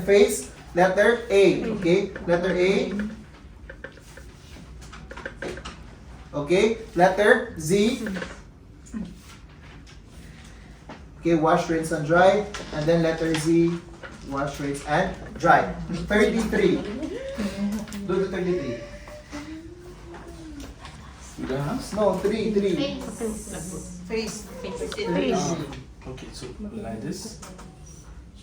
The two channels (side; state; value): both; identical; correlation 1.00